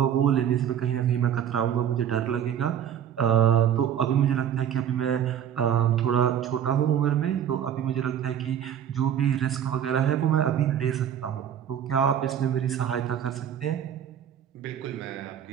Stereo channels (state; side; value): quieter; left; 9.4 dB